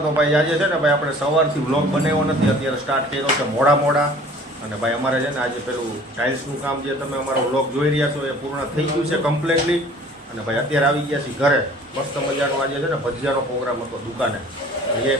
તો ભાઈ આજે છે ને ભાઈ આપણે સવારથી વ્લોગ બનાવ્યો નથી, અત્યારે સ્ટાર્ટ કર્યો છે મોડા અને ભાઈ અમારે છે ને આજે પેલું ટાઇલ્સનું કામ જે તમે અમારો વ્લોગ જોઈ રહ્યા છો એ પૂર્ણ થઈ ગયું છે કમ્પ્લીટલી. અને ભાઈ અત્યારે આવી ગયા છીએ ઘરે. મસ્ત મજાનો આજે છે ને ભજીયાનો પ્રોગ્રામ હતો દુકાને, એ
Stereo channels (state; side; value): normal; both; correlation 0.49